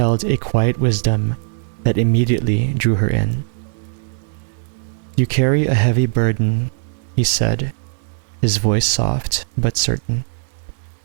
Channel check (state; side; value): silent; left; 66 dB below the other